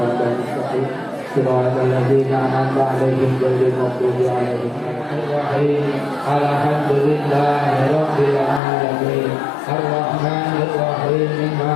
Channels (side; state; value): right; drops out; at 8.6 s